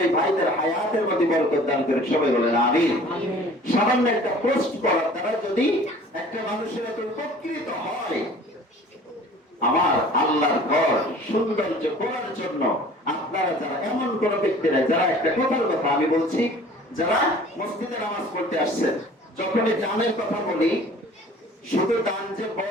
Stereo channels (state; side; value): normal; both; correlation 0.48